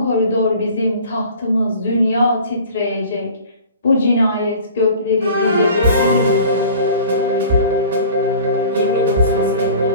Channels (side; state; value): both; inverted; correlation -0.45